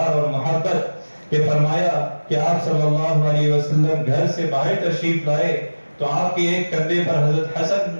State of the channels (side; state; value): both; inverted; correlation -1.00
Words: اور محبت، کہ فرمایا کہ آپ صلی اللہ علیہ وسلم گھر سے باہر تشریف لائے تو آپ کے ایک کندھے پر حضرت حسن